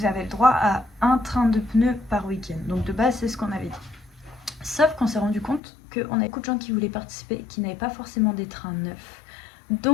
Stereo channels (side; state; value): right; drops out; at 5.6 s